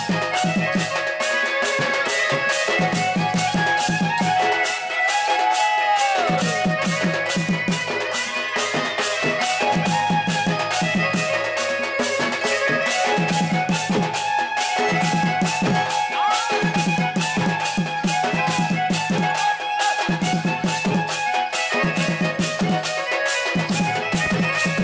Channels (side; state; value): both; identical; correlation 1.00